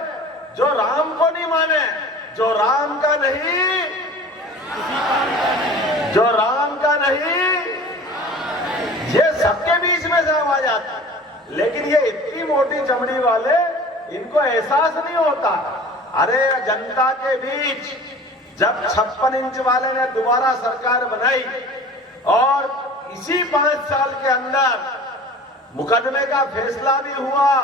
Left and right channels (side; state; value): both; normal; correlation 0.42